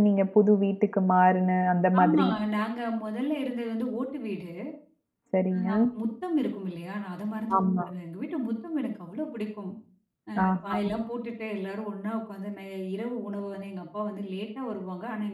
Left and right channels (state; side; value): identical; both; correlation 1.00